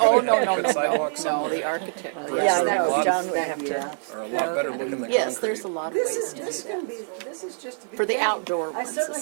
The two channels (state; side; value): silent; left; 62 dB below the other